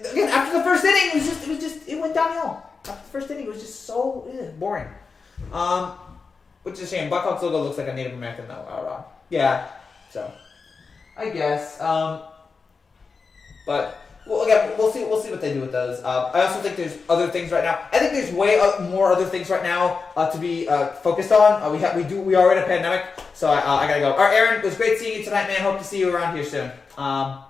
after the first inning, it went downhill. After the first inning, it was just so boring. Which is a shame. Blackhawks logo looks like a Native American though. Yeah, so I guess. But well, again, we'll see what they do with those. I also think there's other things right now. I think there's way more other things right now to be focused on. We are in a pandemic, so I gotta go. All right, Aaron, it was great seeing you tonight, man. Hope to see you around here soon. But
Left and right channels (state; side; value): quieter; right; 4.8 dB